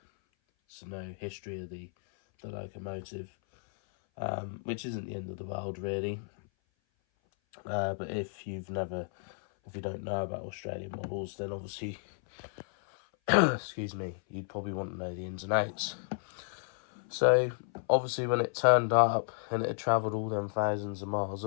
so no history of the locomotive, which isn't the end of the world, really. But if you don't know about Australian models, then obviously excuse me, you'd probably want to know the ins and outs. So obviously when it turned up and it had travelled all them thousands of miles,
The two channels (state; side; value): silent; right; 56 dB below the other